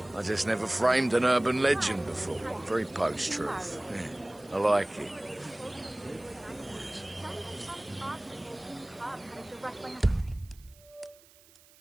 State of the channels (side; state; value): right; noise; hiss, 26 dB below the sound